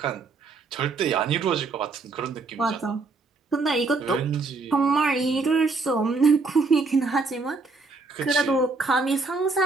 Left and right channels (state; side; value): quieter; left; 4.0 dB